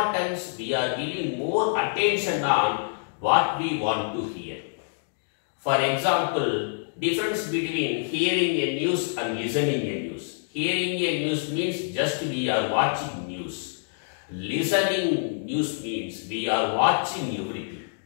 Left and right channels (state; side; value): silent; right; digital silence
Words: we are giving more attention on what we want to hear. For example, difference between hearing a news and listening a news. Hearing a news means just we are watching news. Listening news means we are watching everything.